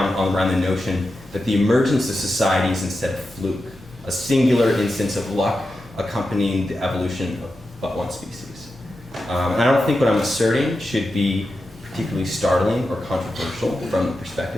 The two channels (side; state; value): both; normal; correlation 0.90